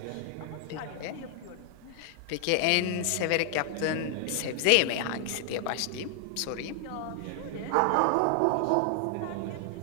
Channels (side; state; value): both; different; correlation 0.00